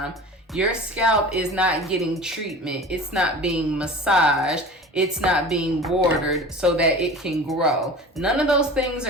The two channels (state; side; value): normal; both; correlation 0.38